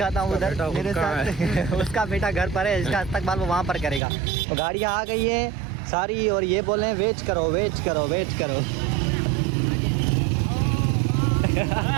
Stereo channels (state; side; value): drops out; left; at 4.0 s